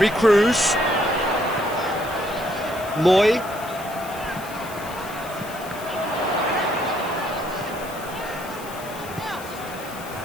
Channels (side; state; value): left; noise; hiss, 16 dB below the sound